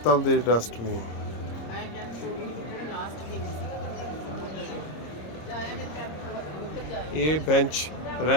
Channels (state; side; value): late; right; 26 ms